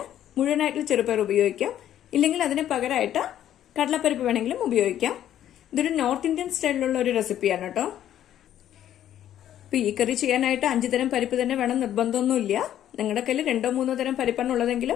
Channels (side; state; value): right; quieter; 11.3 dB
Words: മുഴുവനായിട്ടുള്ള ചെറുപയർ ഉപയോഗിക്കാം, ഇല്ലെങ്കിൽ അതിന് പകരമായിട്ട് കടലപ്പരിപ്പ് വേണമെങ്കിലും ഉപയോഗിക്കാം. ഇതൊരു നോർത്ത് ഇന്ത്യൻ സ്റ്റൈലിലുള്ള ഒരു റെസിപ്പിയാണ് കേട്ടോ. ഇപ്പൊ ഈ കറി ചെയ്യാനായിട്ട് 5 തരം പരിപ്പ് തന്നെ വേണം നിർബന്ധമൊന്നുമില്ല. നിങ്ങളുടെ കയ്യിൽ 2-3 തരം പരിപ്പാണ്